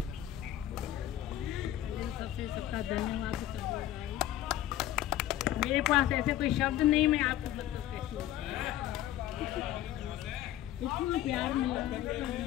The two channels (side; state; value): right; quieter; 12.9 dB